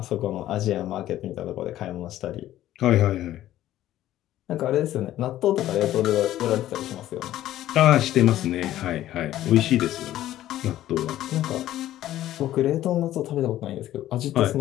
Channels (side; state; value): right; quieter; 13.5 dB